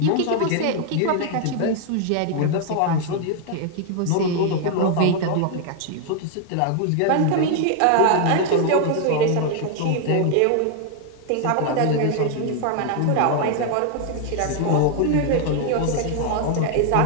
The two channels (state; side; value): different; both; correlation 0.00